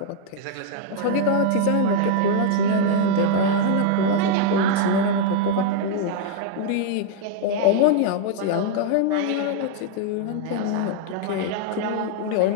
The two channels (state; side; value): different; both; correlation 0.00